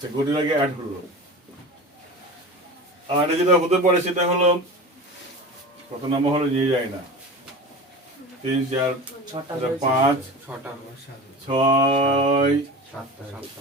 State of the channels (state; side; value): normal; both; correlation 0.32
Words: গতির আগে অ্যাড হলো। আর এটা যেটা হতে পারে সেটা হলো, কত নম্বর হলো নিয়ে যায় না, 3, 4, 5, 6,